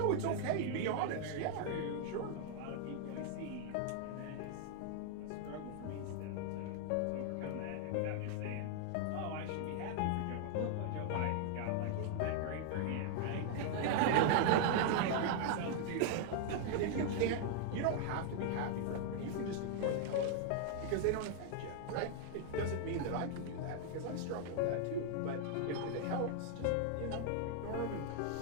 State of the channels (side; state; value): both; different; correlation 0.00